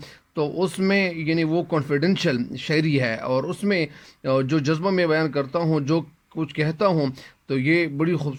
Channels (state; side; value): identical; both; correlation 1.00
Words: تو اس میں یعنی وہ کانفیڈینشیل شاعری ہے، اور اس میں جو جذبہ میں بیان کرتا ہوں، جو کچھ کہتا ہوں، تو یہ بڑی